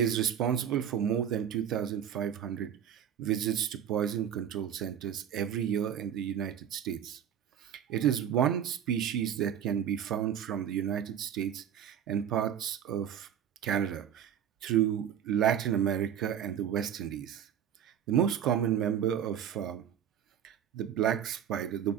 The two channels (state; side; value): quieter; left; 9.4 dB